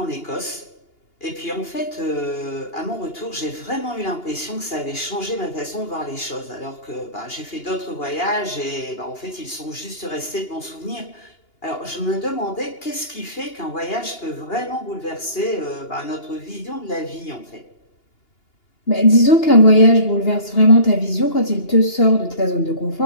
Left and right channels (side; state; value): right; late; 2.8 ms